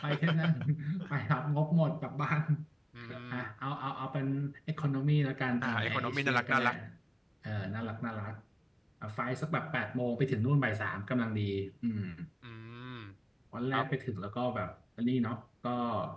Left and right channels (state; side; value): identical; both; correlation 1.00